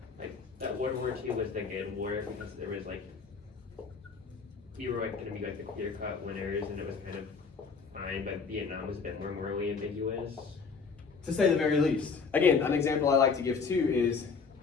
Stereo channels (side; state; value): right; quieter; 5.2 dB